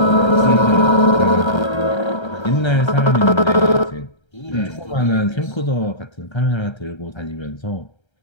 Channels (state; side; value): late; right; 1.3 ms